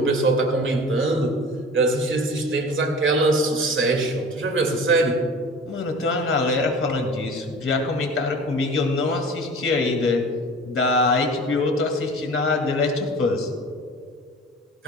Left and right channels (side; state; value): both; normal; correlation 0.39